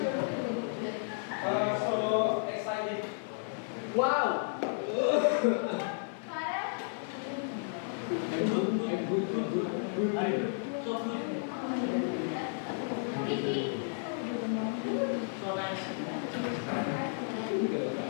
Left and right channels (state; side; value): silent; right; 56 dB below the other